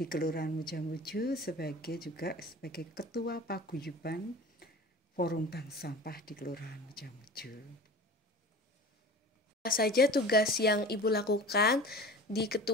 Kelurahan Mujamuju juga sebagai Ketua Paguyuban Forum Bank Sampah di Kelurahan Mujamuju. Apa saja tugas yang Ibu lakukan di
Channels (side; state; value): both; normal; correlation 0.38